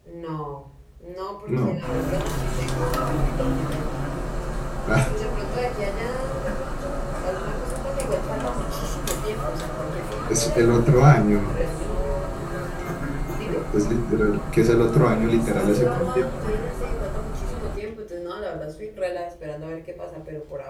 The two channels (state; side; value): identical; both; correlation 1.00